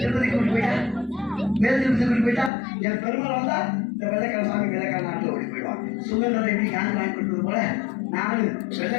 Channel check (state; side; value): drops out; right; at 2.5 s